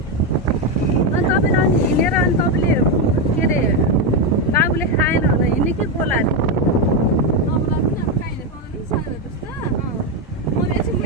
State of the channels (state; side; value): normal; both; correlation 0.08